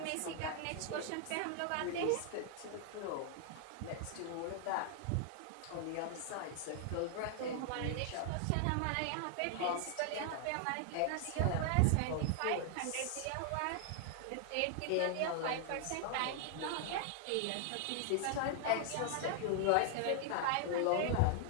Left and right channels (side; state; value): both; different; correlation 0.00